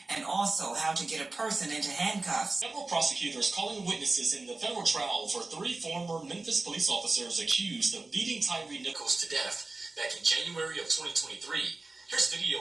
and also how to get a person into handcuffs. Several prosecutors calling witnesses in the federal trial for 3 former Memphis police officers accused of beating Tyre Nichols to death back in January of 2023. Here's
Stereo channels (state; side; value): quieter; left; 3.4 dB